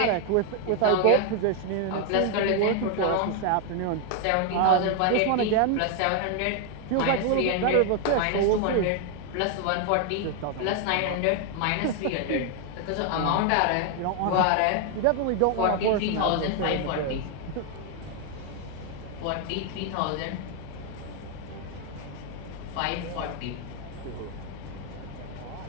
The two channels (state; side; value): different; both; correlation 0.01